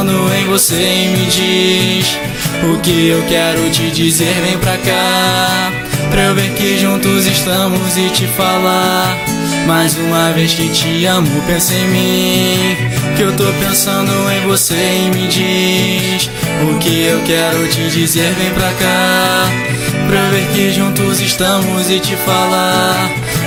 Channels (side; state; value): both; identical; correlation 1.00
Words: em você, e me diz o que eu quero te dizer. Vem pra cá, pra eu ver que juntos estamos e te falar mais uma vez que te amo. Pensa em mim, que eu tô pensando em você, e me diz o que eu quero te dizer. Vem pra cá, pra eu ver que juntos estamos e te falar